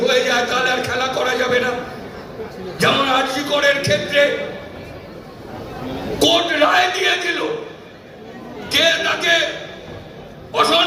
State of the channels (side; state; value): both; identical; correlation 1.00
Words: হয়ে যায় তাহলে আর খেলা করা যাবে না। যেমন আরজি করের ক্ষেত্রে কোর্ট রায় দিয়ে দিল, কে তাকে